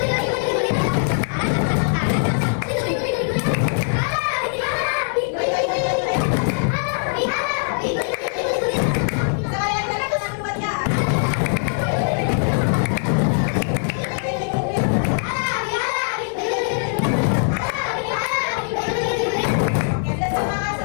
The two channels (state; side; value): silent; right; digital silence